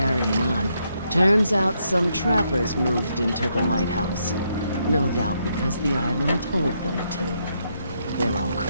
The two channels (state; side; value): inverted; both; correlation -0.77